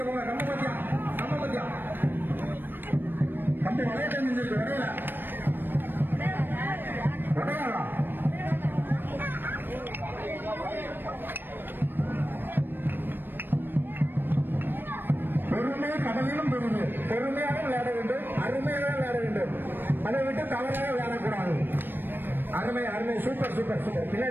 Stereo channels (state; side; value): late; left; 0.095 ms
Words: போங்க. நம்ம பத்தியா கம்பி வளைய தெரிஞ்சிருக்கு. வரையல வரையாளா பெருமை கடலிலும் பெருமை. பெருமையாக விளையாட வேண்டும், அருமையாக விளையாட வேண்டும். அதை விட்டு தவறாக விளையாடக்கூடாது. அருமை அருமை. Super super super.